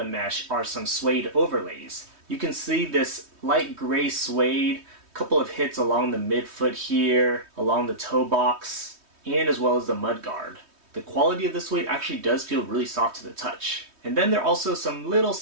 mesh are some suede overlays. You can see this light gray suede, couple of hits along the midfoot here, along the toe box, and as well as the mud guard. The quality of the suede actually does feel really soft to the touch. And then there are also some little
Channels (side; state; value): left; late; 3.2 ms